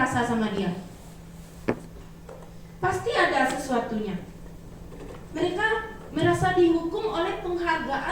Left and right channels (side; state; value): both; identical; correlation 1.00